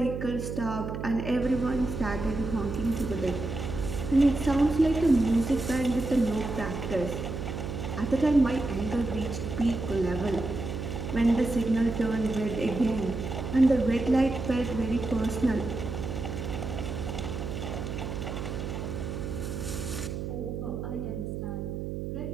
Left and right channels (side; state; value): right; noise; hum, 5 dB below the sound